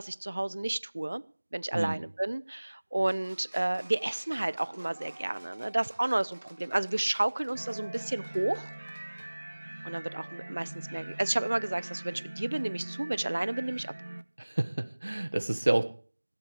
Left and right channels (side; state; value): both; inverted; correlation -1.00